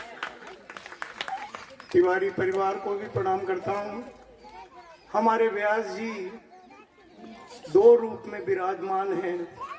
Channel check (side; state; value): both; identical; correlation 1.00